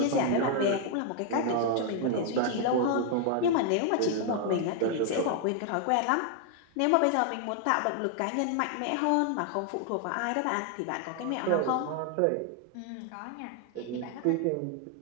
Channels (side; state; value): both; different; correlation 0.00